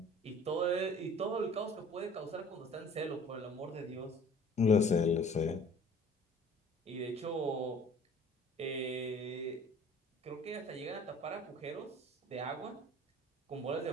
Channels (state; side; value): normal; both; correlation 0.49